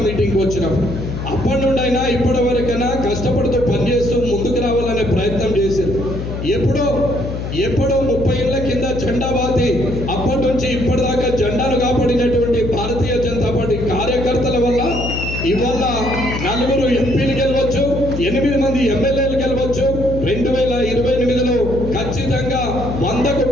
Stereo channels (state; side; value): noise; left; hum, 5 dB below the sound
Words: మీటింగ్కి వచ్చినప్పుడు అప్పటి నుండి అయినా ఇప్పటి వరకైనా కష్టపడుతూ పనిచేస్తూ ముందుకు రావాలనే ప్రయత్నం చేశారు. ఎప్పుడో 30 ఏళ్ల కింద జెండా బాతి అప్పటి నుంచి ఇప్పటిదాకా జెండాను కాపాడినటువంటి భారతీయ జనతా పార్టీ కార్యకర్తల వల్ల ఇవాళ 4 ఎంపీలు గెలవచ్చు, 8 మంది ఎమ్మెల్యేలు గెలవచ్చు. 2028లో ఖచ్చితంగా 100కు